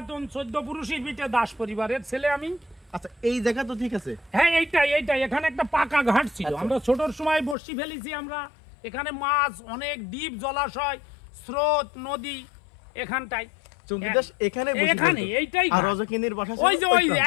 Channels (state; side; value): drops out; right; at 7.6 s